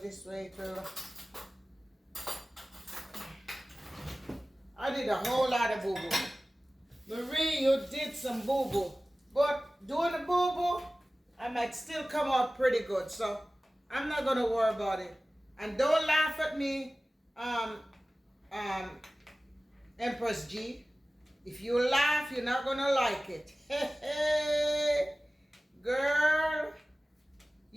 this way it will. I did a whole lot of boo-boo. Marie, you did some boo-boo. But doing the boo-boo, I might still come out pretty good. So I'm not going to worry about it. And don't laugh at me, Empress G. If you laugh, you're not going to like it. Hey, girl,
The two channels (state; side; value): normal; both; correlation 0.97